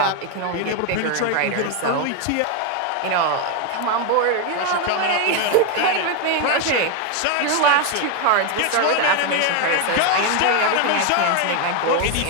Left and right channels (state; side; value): different; both; correlation 0.01